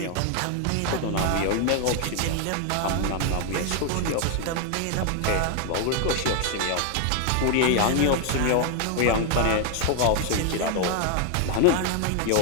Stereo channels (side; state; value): both; different; correlation 0.00